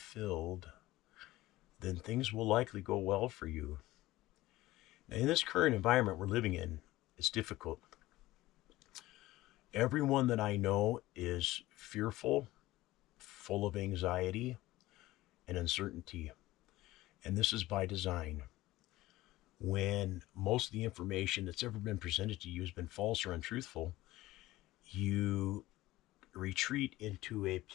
then things will likely go well for you. Now, in this current environment we're living in, it's difficult. Everyone that I know is fearful, full of anxiety and uncertainty. And this is by design. When most of the information that's ever been presented to you has been false or untruthful, you retreat into a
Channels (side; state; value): right; quieter; 17.4 dB